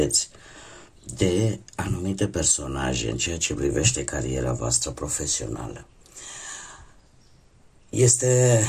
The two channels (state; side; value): identical; both; correlation 1.00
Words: de anumite personaje în ceea ce privește cariera voastră profesională. Este